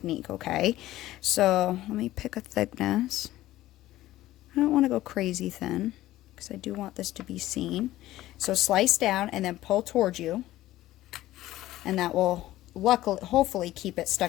okay? So let me pick a thickness. I don't want to go crazy thin, because I do want this to be seen. So slice down and then pull towards you, and that will hopefully keep it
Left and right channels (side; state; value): right; quieter; 15.5 dB